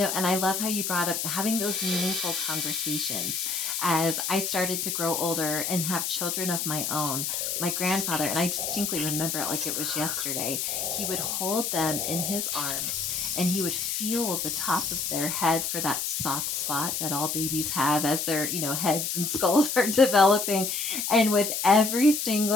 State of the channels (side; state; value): left; noise; hiss, 1 dB below the sound